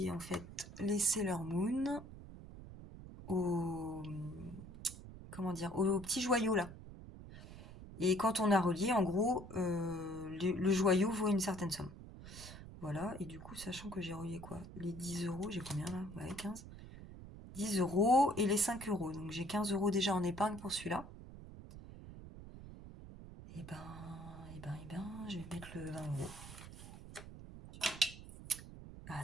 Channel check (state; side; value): noise; right; rumble, 14 dB below the sound